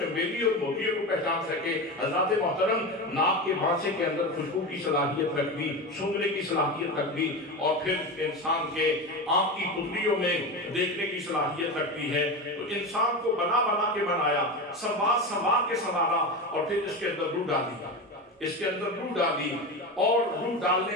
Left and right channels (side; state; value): both; normal; correlation 0.22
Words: اور موتیوں کو پہچان سکے۔ حضرات محترم، ناک کے بانسے کے اندر خوشبو کی صلاحیت رکھ دی، سونگنے کی صلاحیت رکھ دی، اور پھر انسان کے آنکھ کی پتلیوں میں دیکھنے کی صلاحیت رکھتی ہے۔ تو انسان کو بنا بنا کے بنایا، سنوار کے سنوارا، اور پھر اس کے اندر روح ڈالی، اس کے اندر روح ڈالی، اور روح ڈالنے